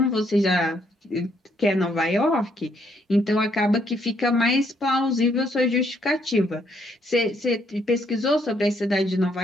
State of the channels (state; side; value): normal; both; correlation 0.71